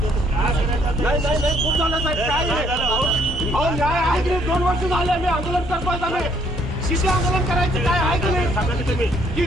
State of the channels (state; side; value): normal; both; correlation 0.66